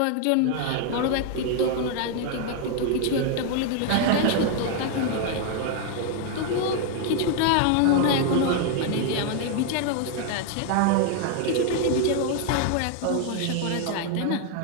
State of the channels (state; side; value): different; both; correlation 0.00